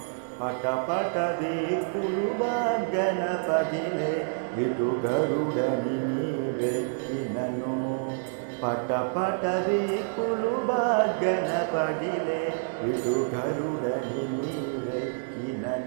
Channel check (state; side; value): silent; left; 59 dB below the other